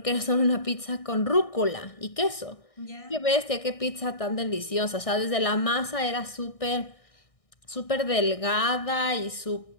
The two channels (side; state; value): right; late; 1.6 ms